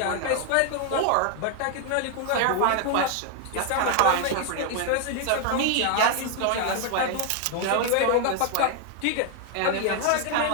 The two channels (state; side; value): different; both; correlation 0.00